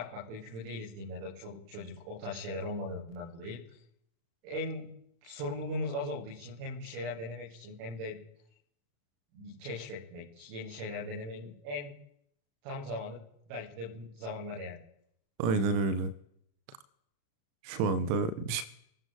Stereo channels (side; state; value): left; late; 36 ms